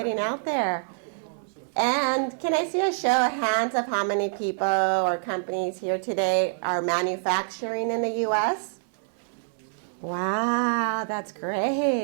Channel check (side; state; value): left; silent; digital silence